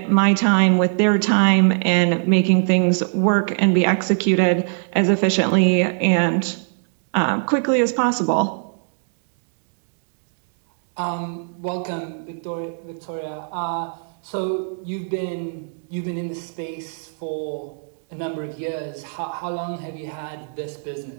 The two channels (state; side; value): silent; left; 62 dB below the other